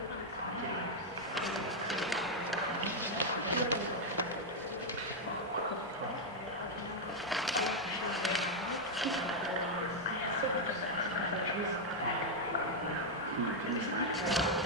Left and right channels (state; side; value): normal; both; correlation -0.01